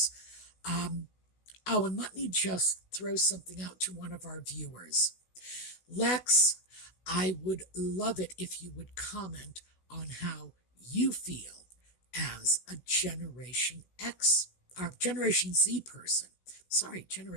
And let me just throw something out to one of our viewers. Lex, I would love it if you would comment on how you feel as a Generation X, or Generation Z person. Sorry,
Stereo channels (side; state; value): right; late; 16 ms